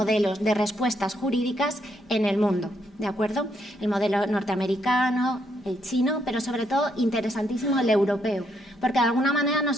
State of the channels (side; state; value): both; normal; correlation 0.75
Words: de respuestas jurídicas en el mundo, ¿de acuerdo? El modelo norteamericano, el chino, pero sobre todo interesantísimo el europeo, porque de alguna manera